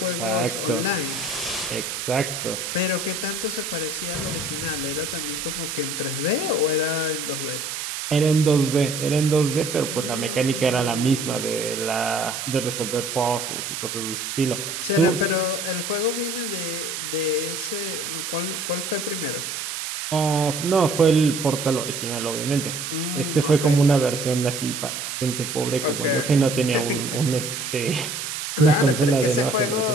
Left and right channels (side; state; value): right; noise; hiss, 5 dB below the sound